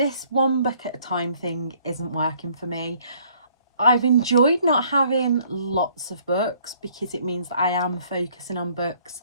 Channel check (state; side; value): inverted; both; correlation -0.61